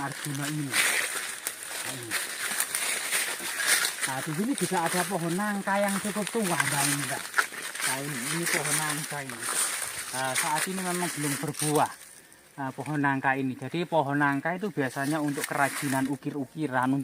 Arjuna ini. Nah, di sini juga ada pohon nangka yang cukup tua, Mbak. Nah, ini pohon nangka ini. Saat ini memang belum berbuah. Pohon nangka ini. Jadi pohon nangka itu biasanya untuk kerajinan ukir-ukiran,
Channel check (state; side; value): identical; both; correlation 1.00